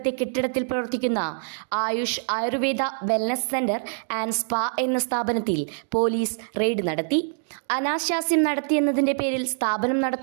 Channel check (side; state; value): left; silent; digital silence